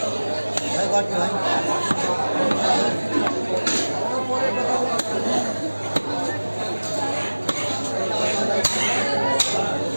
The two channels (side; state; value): both; inverted; correlation -1.00